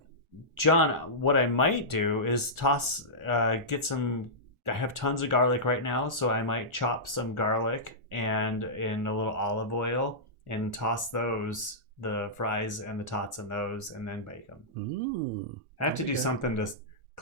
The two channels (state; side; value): late; left; 1.4 ms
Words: John, what I might do is get some. I have tons of garlic right now, so I might chop some garlic and in a little olive oil and toss those, the fries and the tots in those, and then bake them. I have to do something to